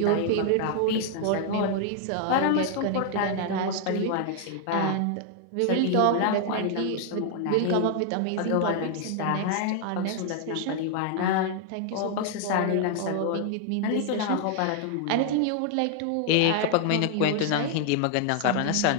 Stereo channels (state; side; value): different; both; correlation 0.00